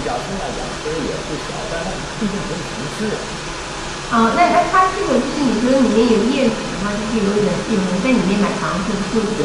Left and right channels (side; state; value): both; identical; correlation 1.00